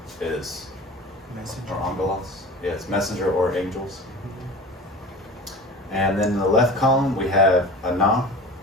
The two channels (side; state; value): both; normal; correlation 0.38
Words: is, Messenger. or angelos, yeah, it's messenger or angels. And then in the left column we have ana,